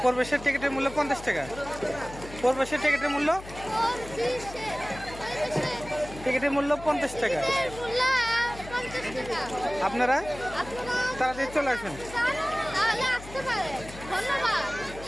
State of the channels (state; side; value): noise; left; hum, 15 dB below the sound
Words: প্রবেশের টিকিটের মূল্য 50 টাকা। প্রবেশের টিকিটের মূল্য 50 টাকা। আপনারা তাড়াতাড়ি চলে আসবেন।